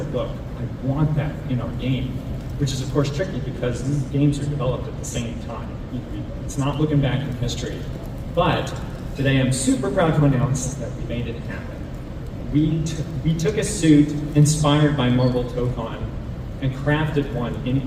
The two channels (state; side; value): identical; both; correlation 1.00